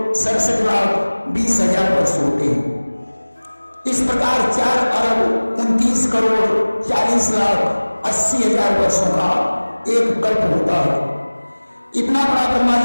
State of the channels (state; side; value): inverted; both; correlation -1.00